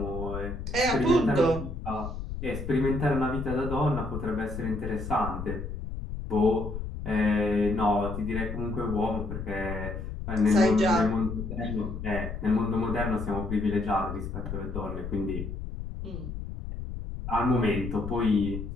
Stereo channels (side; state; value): left; noise; rumble, 7 dB below the sound